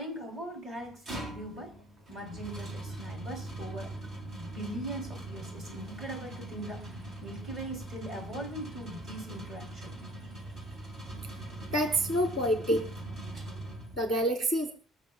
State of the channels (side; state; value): both; normal; correlation 0.52